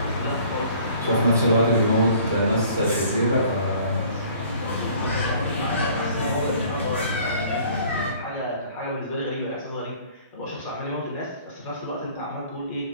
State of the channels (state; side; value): inverted; both; correlation -0.53